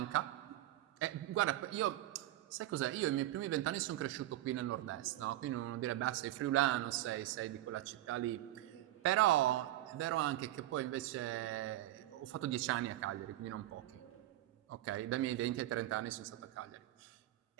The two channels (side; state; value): left; quieter; 14.9 dB